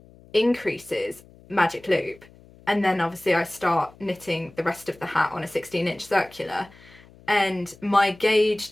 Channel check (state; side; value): noise; left; hum, 24 dB below the sound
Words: increases magic loop, and then obviously I start knitting the rest of the hat on a 16-inch circular, and my